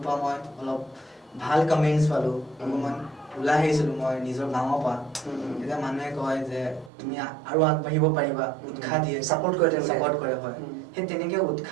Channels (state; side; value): drops out; left; at 6.9 s